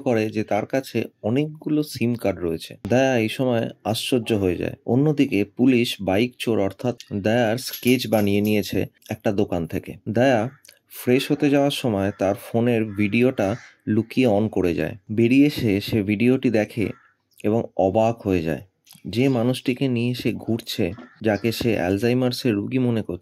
করে যে তার কাছে অনেকগুলো সিম কার্ড রয়েছে। দয়া এই সময় আশ্চর্য হয়ে যায়। অন্যদিকে পুলিশ বাইক চোর অর্থাৎ দয়ার স্কেচ বানিয়ে নিয়েছে একটা দোকান থেকে। দয়া ফ্রেশ হতে যাওয়ার সময় তার ফোনের ভিডিওটা লুকিয়ে অন করে যায়। বেরিয়ে এসে সে ভিডিওটি দেখে এবং অবাক হয়ে যায়। যে মানুষটিকে নিয়ে সে ঘুরছে, যাকে সে অ্যালজাইমার্সের রোগী মনে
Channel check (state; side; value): identical; both; correlation 1.00